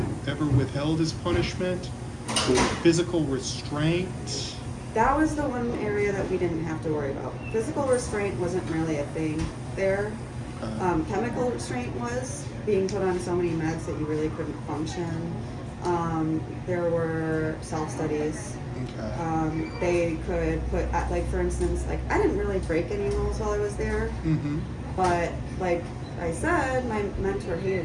ever withheld as punishment, or physical restraint? That was the one area that we didn't have to worry about. Physical restraint wasn't really a thing there. Chemical restraint was, being put on so many meds that you really couldn't function. There were self-studies. Okay. They could put, like, for instance, like, I didn't really break any rules while I was there, Mm-hmm. but like I said, my mentor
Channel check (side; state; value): both; identical; correlation 1.00